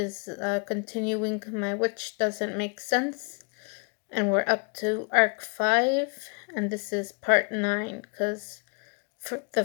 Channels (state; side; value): quieter; right; 35.2 dB